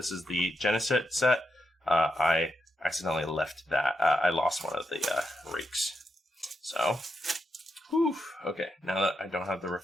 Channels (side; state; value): both; normal; correlation 0.84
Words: is the Genesis set. I accidentally left that. I lost one of the rakes. So, whew. Okay, now that I don't have the